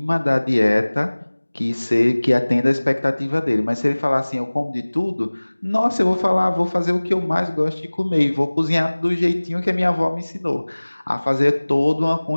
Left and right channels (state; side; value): inverted; both; correlation -1.00